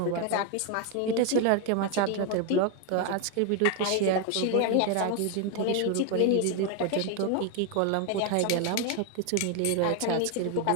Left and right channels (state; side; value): different; both; correlation 0.01